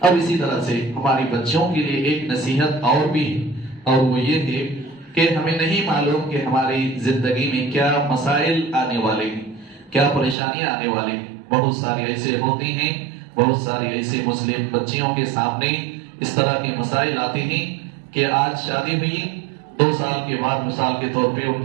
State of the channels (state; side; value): drops out; left; at 10.4 s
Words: अब इसी तरह से हमारी बच्चियों के लिए एक नसीहत और भी है और वो ये है कि हमें नहीं मालूम कि हमारी जिंदगी में क्या मसाइल आने वाले हैं, क्या परेशानियां आने वाली हैं। बहुत सारी ऐसे होती हैं, बहुत सारी ऐसे मुस्लिम बच्चियों के सामने इस तरह के मसाइल आते हैं कि आज शादी हुई 2 साल के बाद मिसाल के तौर पे